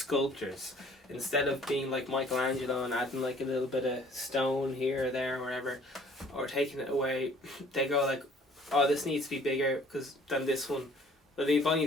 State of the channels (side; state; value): both; normal; correlation 0.55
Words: Instead of being like Michelangelo and adding like a little bit of stone here or there or whatever, or taking it away, they go like, oh, this needs to be bigger than this one. But they both need